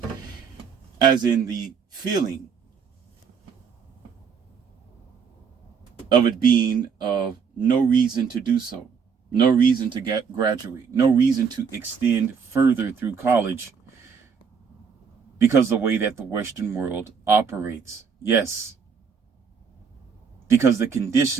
As in the feeling of it being of no reason to do so, no reason to graduate, no reason to extend further through college because of the way that the Western world operates. Yes. Because the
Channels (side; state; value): left; quieter; 6.2 dB